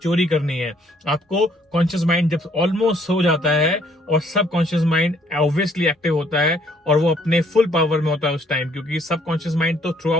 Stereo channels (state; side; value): normal; both; correlation 0.64